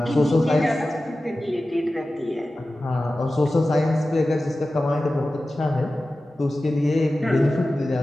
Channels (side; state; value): both; normal; correlation 0.95